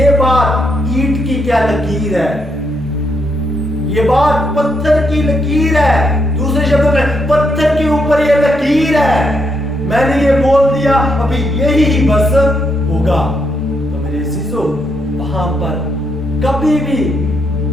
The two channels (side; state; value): both; normal; correlation 0.78